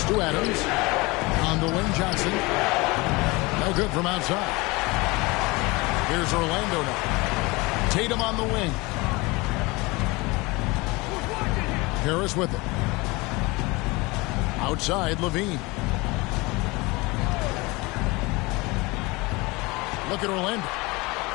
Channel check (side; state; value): right; quieter; 24.0 dB